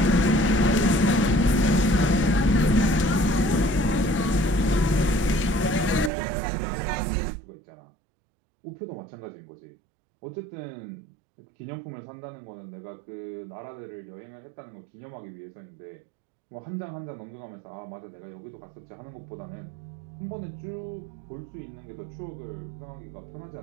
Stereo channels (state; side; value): drops out; left; at 6.1 s